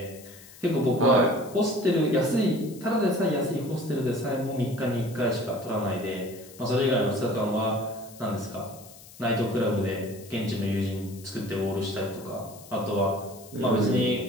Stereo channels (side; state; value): left; noise; hiss, 20 dB below the sound